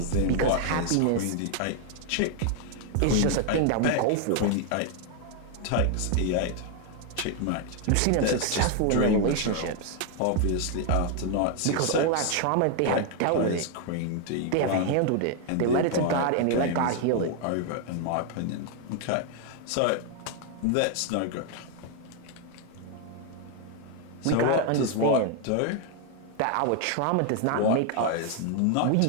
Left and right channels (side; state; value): both; different; correlation 0.00